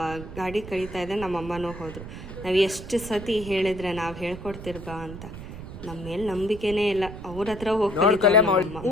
ಗಾಡಿ ಕಳೀತಾ ಇದೆ, ನಮ್ಮ ಅಮ್ಮನೂ ಹೋದರು. ನಾವು ಎಷ್ಟು ಸತಿ ಹೇಳಿದ್ರೆ ನಾವು ಹೇಳ್ಕೊಡ್ತಿರ್ಬಾ ಅಂತ, ನಮ್ಮ ಮೇಲೆ ನಂಬಿಕೆನೇ ಇಲ್ಲ. ಅವ್ರ ಹತ್ರ ಹೋಗಿ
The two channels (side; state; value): right; noise; rumble, 11 dB below the sound